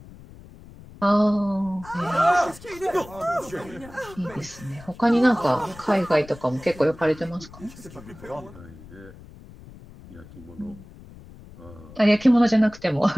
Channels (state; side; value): noise; left; rumble, 19 dB below the sound